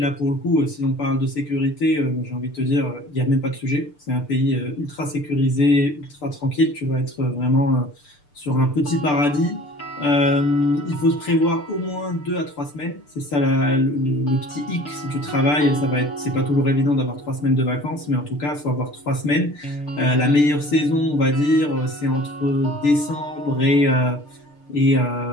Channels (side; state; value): right; late; 6.8 ms